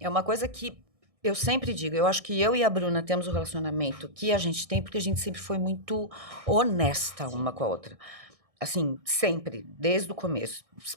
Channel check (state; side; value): late; left; 1.6 ms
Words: uma coisa que eu sempre digo. Eu acho que eu e a Bruna temos o relacionamento que a gente tem, porque a gente sempre foi muito honesta uma com a outra. Assim, sempre, desde o começo.